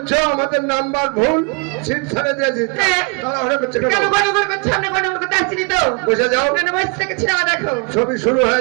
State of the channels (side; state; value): left; quieter; 33.9 dB